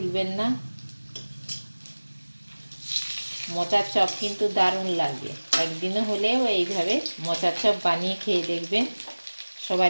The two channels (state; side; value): inverted; both; correlation -1.00